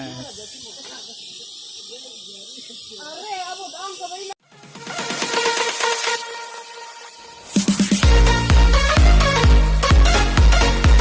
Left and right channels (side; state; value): both; identical; correlation 1.00